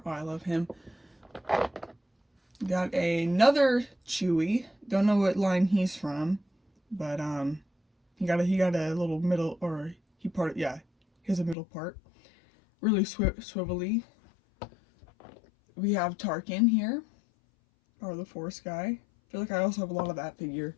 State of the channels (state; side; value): drops out; right; at 11.6 s